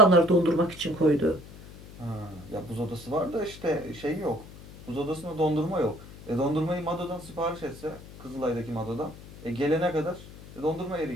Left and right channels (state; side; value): noise; left; hum, 17 dB below the sound